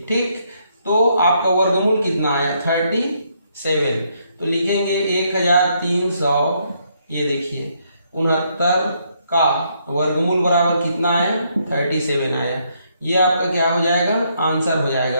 ठीक। तो आपका वर्गमूल कितना आया 37, तो लिखेंगे 1300, ये देखिए 69 का वर्गमूल बराबर कितना आया 37 आया। ये आपका क्या हो जाएगा, आंसर हो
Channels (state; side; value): inverted; both; correlation -0.73